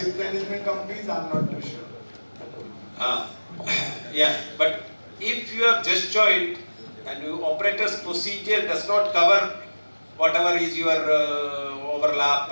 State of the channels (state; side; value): inverted; both; correlation -1.00